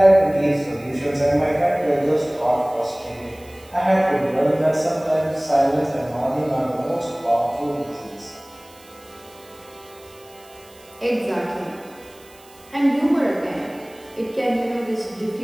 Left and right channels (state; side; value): noise; right; hiss, 25 dB below the sound